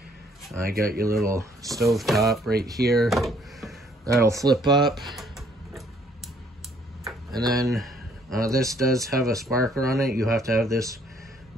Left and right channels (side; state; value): both; normal; correlation 0.64